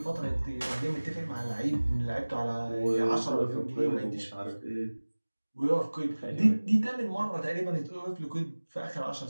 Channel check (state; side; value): inverted; both; correlation -1.00